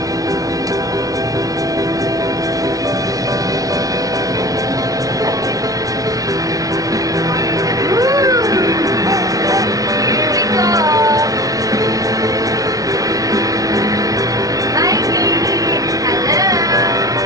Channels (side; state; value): left; late; 0.18 ms